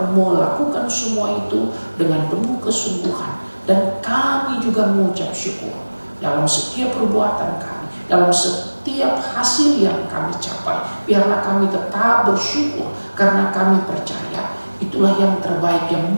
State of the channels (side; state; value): both; inverted; correlation -1.00